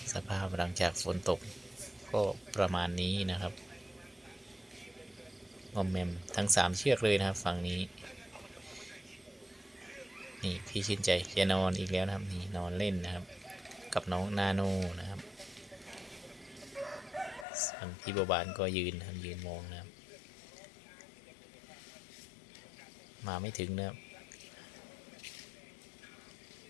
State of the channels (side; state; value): right; drops out; at 17.4 s